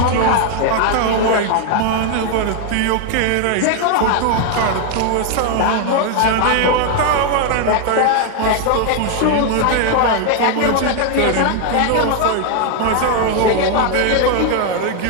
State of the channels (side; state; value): both; different; correlation 0.00